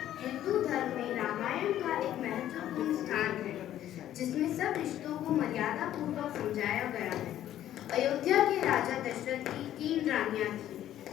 हिंदू धर्म में रामायण का एक महत्वपूर्ण स्थान है, जिसमें सब रिश्तों को मर्यादा पूर्वक समझाया गया है। अयोध्या के राजा दशरथ की 3 रानियां थीं,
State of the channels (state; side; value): quieter; right; 12.1 dB